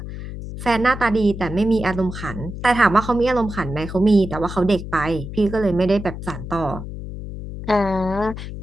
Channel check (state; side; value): noise; left; hum, 9 dB below the sound